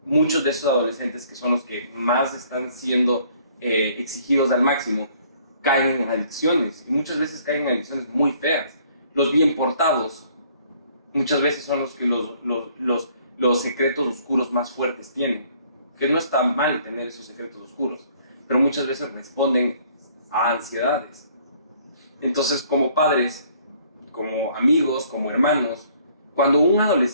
muchos de esos adolescentes, que son los que más están siendo exigidos al máximo, caen en adicciones. Y muchas veces caen en adicciones muy feas. Los bien portados muchas veces son los que los secretos oscuros más fuertes tienen. Que no está mal tener esos secretos oscuros, pero muchas veces responden a ansiedades. Entonces, como padres, como amigos, como hermanos, cuando un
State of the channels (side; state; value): both; inverted; correlation -0.60